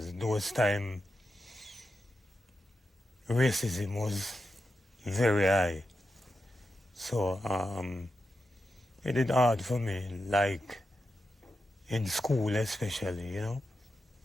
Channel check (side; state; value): both; normal; correlation 0.89